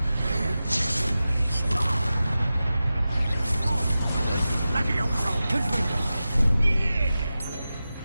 Levioso! Confringo! Yeah!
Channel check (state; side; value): inverted; both; correlation -0.94